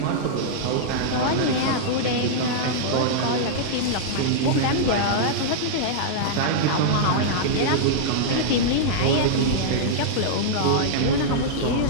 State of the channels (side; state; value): both; different; correlation -0.02